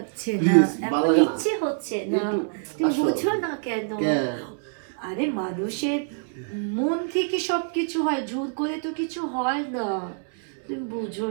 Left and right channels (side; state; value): left; silent; digital silence